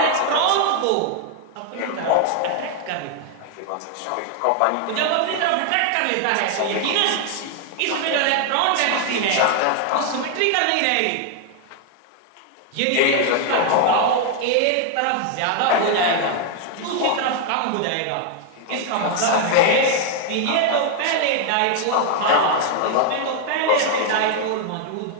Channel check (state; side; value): different; both; correlation 0.00